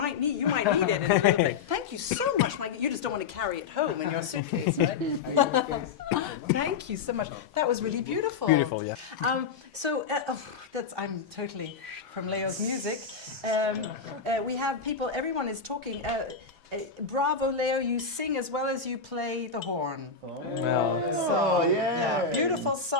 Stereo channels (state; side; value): quieter; right; 5.6 dB